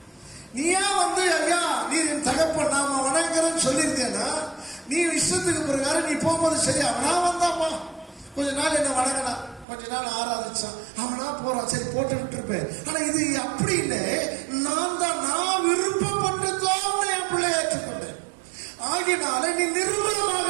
நீயா வந்து, ஐயா நீ என் தகப்பன் நாம வணங்குறேன்னு சொல்லியிருந்தேன்னா, நீ இஷ்டத்துக்கு பிரகாரம் நீ போகும்போது சரி, அவனா வந்தாமா, கொஞ்ச நாள் என்ன வணங்கினா, கொஞ்ச நாள் ஆராதிச்சான், அவனா போறான், சரி போட்டு விட்டு இருப்பேன். ஆனா இது அப்படி இல்லை, நான் விருப்பப்பட்டுதான் என் பிள்ளை ஏற்றுக்கொண்டேன், ஆகினால நீ நிர்மூலமாக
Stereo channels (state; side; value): drops out; left; at 9.7 s